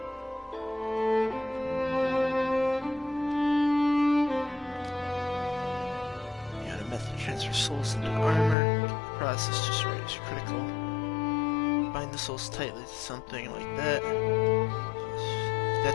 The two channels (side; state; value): right; drops out; at 8.6 s